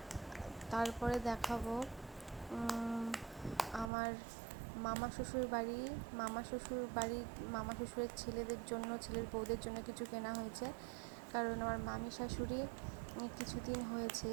তারপরে দেখাবো আমার মামা শ্বশুর শ্বশুরের ছেলেদের জন্য, ছেলের বউদের জন্য কিছু কেনা হয়েছে। কারণ আমার মামি শাশুড়ি কিছুদিন হয়েছে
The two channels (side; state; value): left; drops out; at 3.9 s